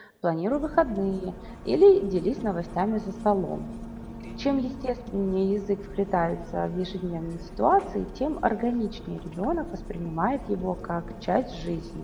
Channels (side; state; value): both; identical; correlation 1.00